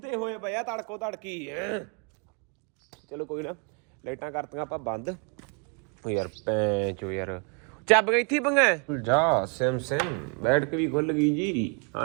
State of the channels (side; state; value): left; quieter; 37.5 dB